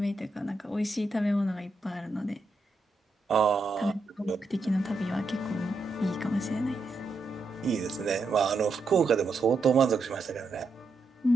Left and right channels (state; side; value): quieter; left; 3.2 dB